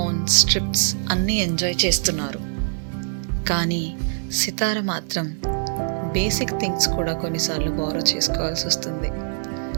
ట్రిప్స్ అన్నీ ఎంజాయ్ చేస్తున్నారు. కానీ సితార మాత్రం బేసిక్ థింగ్స్ కూడా కొన్నిసార్లు బారో చేసుకోవాల్సి వస్తుంది.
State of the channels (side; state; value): left; silent; digital silence